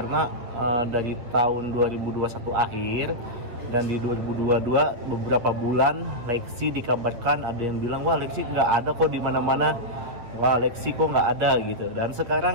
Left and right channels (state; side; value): late; left; 8.3 ms